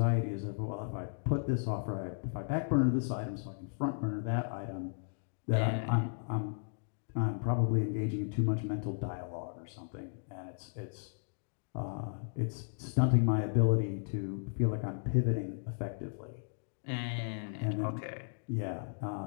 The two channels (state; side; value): silent; right; digital silence